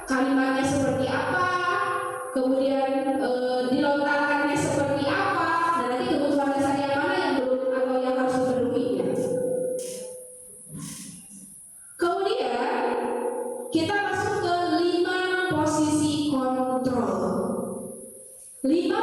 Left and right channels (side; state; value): both; identical; correlation 1.00